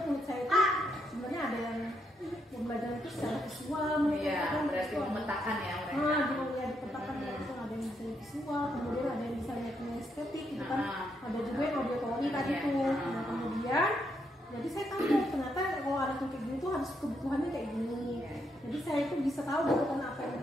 saya itu sebenarnya ada yang belajar itu secara visual, berarti memetakan ya mereka. Dipetakan itu ada yang bisa visual, kemudian ada yang bisa lihat estetik gitu kan. Ada juga yang auditory tadi tuh. Nah, kemudian jadi saya tahu ternyata kalau anak yang kayak gini tuh harus kebutuhannya kayak gini. Jadi saya itu bisa tahu kebutuhan apa yang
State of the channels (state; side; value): normal; both; correlation 0.78